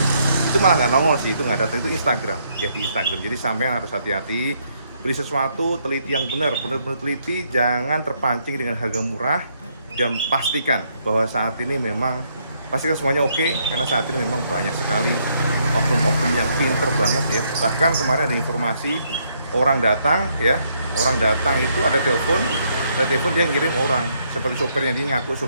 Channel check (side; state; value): both; inverted; correlation -0.72